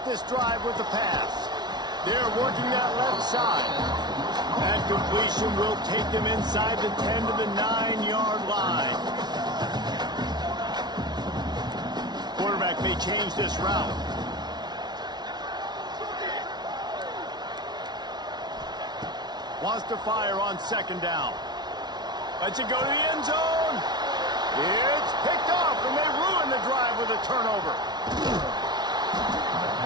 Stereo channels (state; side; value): late; left; 0.20 ms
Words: this drive with the pass. They're working that left side. That completion will take them inside the 10 to the 9-yard line. Quarterback may change this route. Wants to fire on 2nd down. Lets it go to the end zone. It's picked off, and they ruin the drive with a turnover.